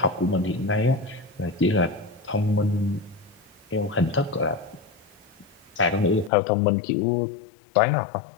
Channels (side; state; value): right; drops out; at 6.3 s